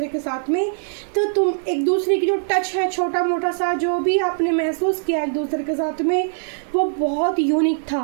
के साथ में। तो तुम एक दूसरे की जो टच है, छोटा मोटा सा जो भी आपने महसूस किया एक दूसरे के साथ में, वो बहुत यूनिक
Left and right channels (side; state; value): left; silent; digital silence